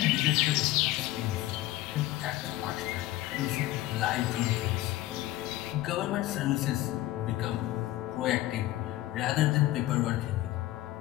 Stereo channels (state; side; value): quieter; right; 16.3 dB